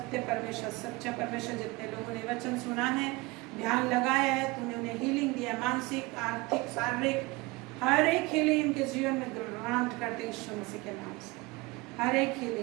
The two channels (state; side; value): quieter; left; 23.4 dB